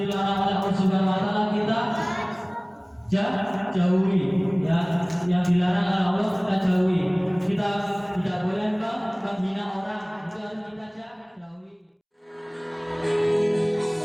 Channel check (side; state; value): both; identical; correlation 1.00